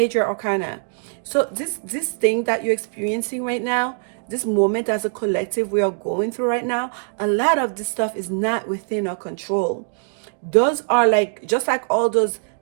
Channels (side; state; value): left; silent; digital silence